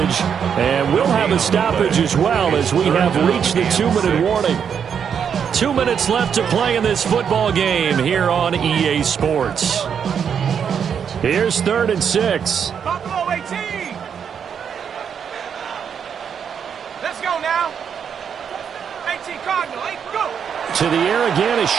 And we'll have a stoppage as well as we have reached the 2-minute warning. 2 minutes left to play in this football game here on EA Sports. Here's 3rd and 6. Buffalo 18. Let's go now. 18 Cardinal, 8, go. To the air again is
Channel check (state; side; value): quieter; left; 7.5 dB